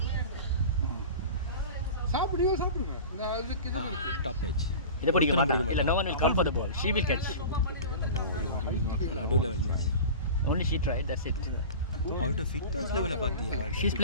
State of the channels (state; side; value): inverted; both; correlation -0.34